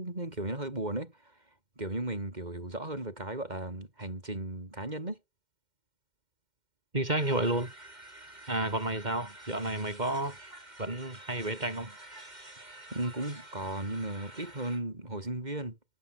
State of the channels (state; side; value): late; left; 2.1 ms